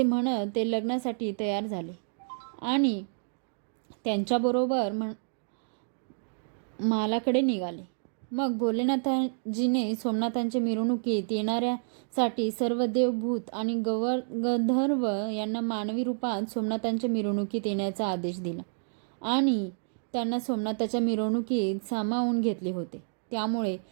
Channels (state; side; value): silent; left; digital silence